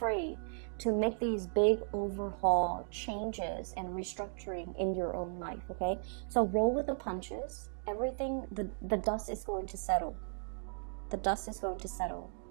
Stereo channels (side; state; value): left; silent; digital silence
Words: to make these big overhaul changes and restructuring in your own life, okay? So roll with the punches. Everything, the dust is going to settle. The dust is going to settle.